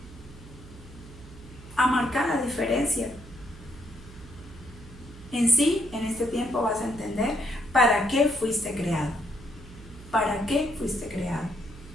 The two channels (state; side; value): noise; right; hum, 18 dB below the sound